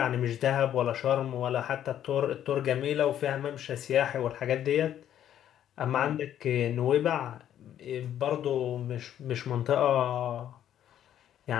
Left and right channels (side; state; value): right; quieter; 10.7 dB